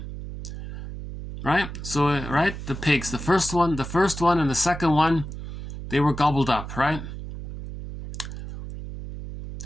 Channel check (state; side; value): noise; right; hum, 9 dB below the sound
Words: Right? So, right, the pigs, the first one and the second one, they were gobbled up, right?